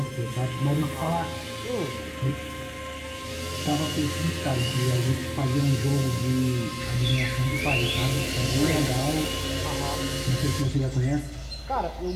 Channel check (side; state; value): both; identical; correlation 1.00